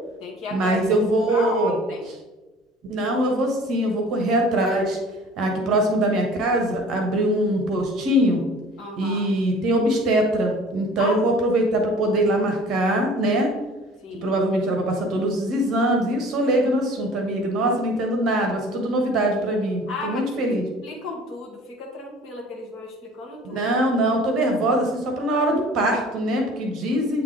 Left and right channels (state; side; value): normal; both; correlation 0.48